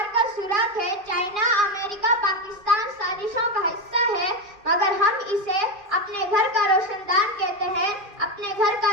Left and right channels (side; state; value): left; late; 2.4 ms